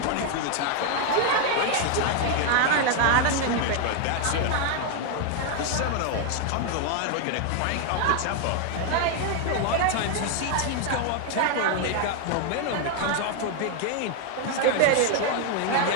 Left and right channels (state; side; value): different; both; correlation 0.00